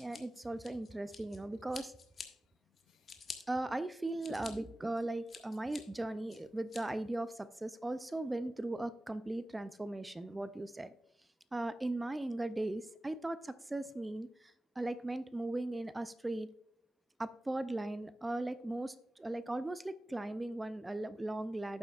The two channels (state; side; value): normal; both; correlation 0.96